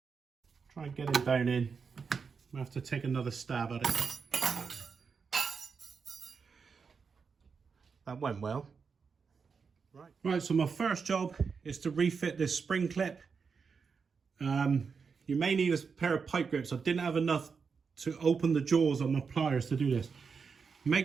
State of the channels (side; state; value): left; quieter; 5.5 dB